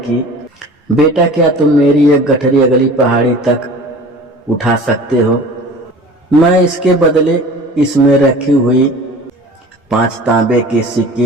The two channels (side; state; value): both; normal; correlation 0.41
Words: बेटा, क्या तुम मेरी एक गठरी अगली पहाड़ी तक उठा सकते हो? मैं इसके बदले इसमें रखी हुई 5 तांबे के